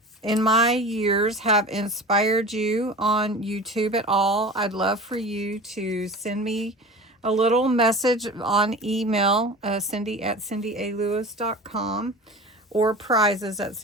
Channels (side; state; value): both; normal; correlation 0.36